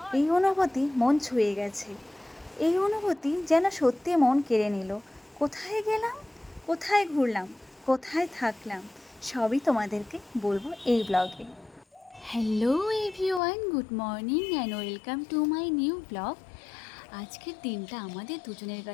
এই অনুভূতি মন ছুঁয়ে গেছে। এই অনুভূতি যেন সত্যি মন কেড়ে নিল। কোথায় গেলাম, কোথায় ঘুরলাম, কোথায় থাকলাম, সবই তোমাদেরকে বলবো এই ব্লগে। Hello everyone, good morning and welcome to my new blog. আজকের দিনটা আমাদের দুজনের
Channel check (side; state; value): right; drops out; at 13.4 s